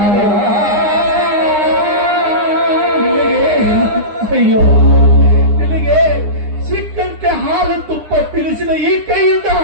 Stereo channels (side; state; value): left; late; 9.8 ms